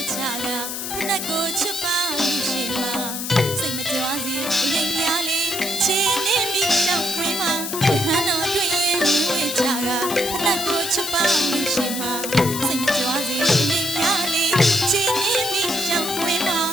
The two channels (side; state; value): left; noise; hiss, 5 dB below the sound